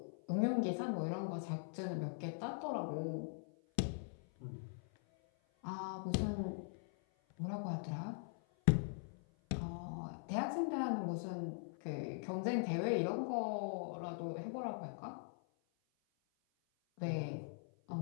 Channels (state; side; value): silent; right; 50 dB below the other